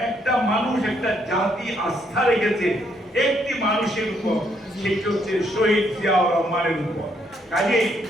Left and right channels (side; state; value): both; normal; correlation 0.72